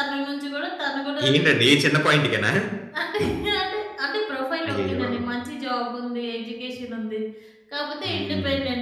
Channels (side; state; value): both; identical; correlation 1.00